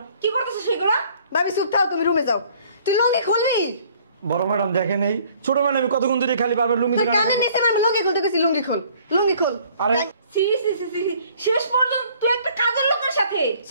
কি করতেছ সেগুলো? ভাবি চুপ থাও, তুমি রুমে যাও। তুই লুঙ্গি খুলবি? বড় ম্যাডাম দেখেন, এই ছোট ম্যাডাম আমি কতক্ষণ ধরে খালি বারবার লুঙ্গি তোর ধরে কানে নিচে আমি লুঙ্গি খুলতে কইছি, লুঙ্গি খোল, লুঙ্গি খোল। আরে সি সি সি সি শেষ পর্যন্ত তুই একটা কাজের লোকের সাথে।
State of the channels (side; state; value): both; inverted; correlation -0.57